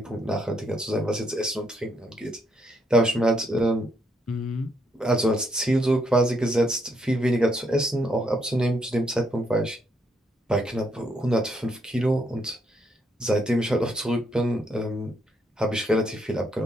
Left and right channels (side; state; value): both; normal; correlation 0.74